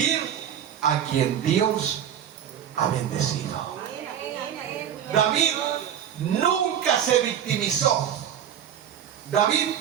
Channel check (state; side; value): quieter; left; 9.4 dB